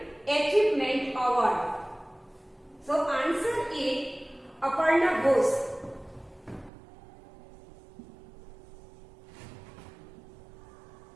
Achievement Award. So answer is Aparna Ghosh.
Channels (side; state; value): left; drops out; at 6.7 s